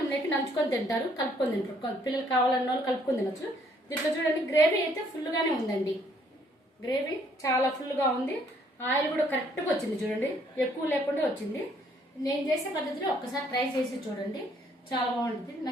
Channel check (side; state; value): both; normal; correlation 0.65